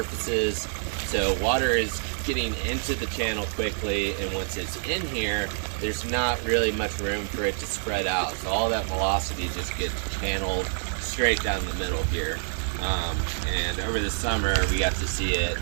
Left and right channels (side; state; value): left; silent; 56 dB below the other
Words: so water is getting into the channel quickly, and once it's in here, there's not really much room for it to spread out. So all that velocity just gets channeled straight down the middle here. And over the summer, we got to see it